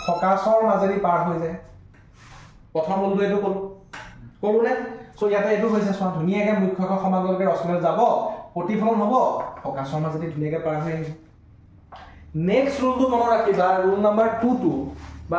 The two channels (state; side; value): identical; both; correlation 1.00